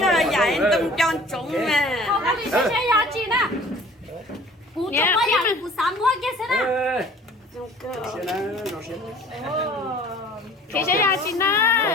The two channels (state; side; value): normal; both; correlation 0.49